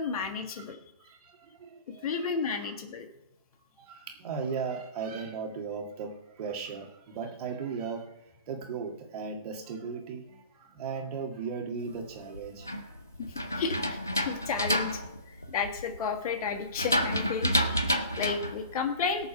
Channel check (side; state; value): both; inverted; correlation -0.40